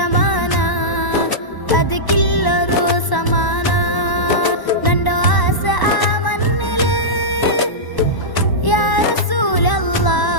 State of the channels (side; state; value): right; late; 1.0 ms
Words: അത് കില്ലറു സമാന നണ്ടോ ആസ ആ മണ്ണില് യാ